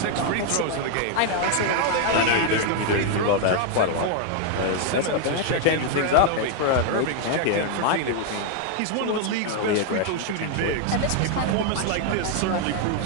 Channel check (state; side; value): different; both; correlation 0.01